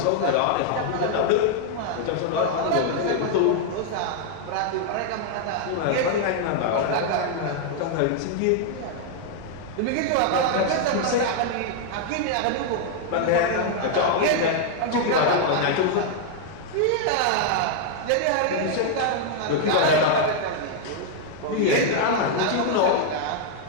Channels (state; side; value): different; both; correlation 0.00